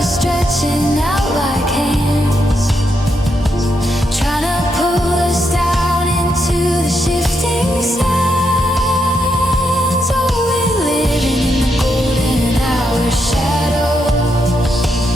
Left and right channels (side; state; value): both; normal; correlation 0.81